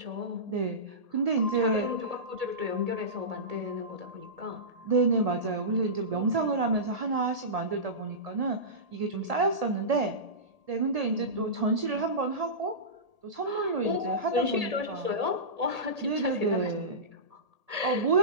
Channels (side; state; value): left; late; 1.8 ms